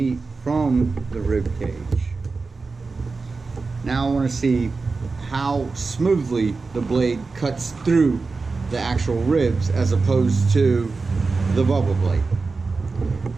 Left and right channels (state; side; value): quieter; left; 4.1 dB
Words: from the rib cage. Now I want to see how smoothly the blade cuts through the actual ribs as opposed to the Bubba Blade.